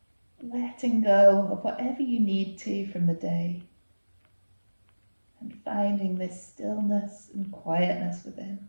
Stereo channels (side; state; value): both; inverted; correlation -1.00